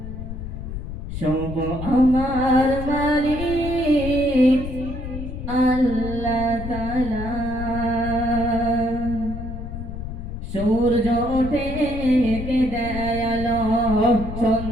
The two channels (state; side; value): noise; left; rumble, 7 dB below the sound